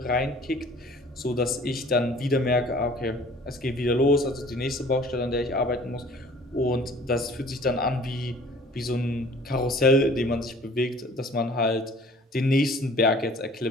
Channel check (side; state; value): both; normal; correlation 0.50